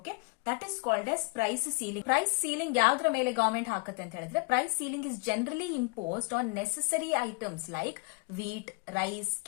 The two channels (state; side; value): quieter; right; 27.3 dB